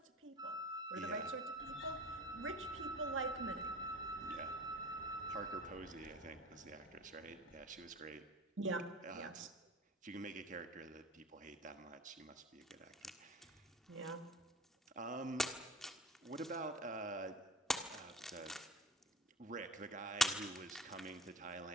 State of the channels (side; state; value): both; normal; correlation 0.39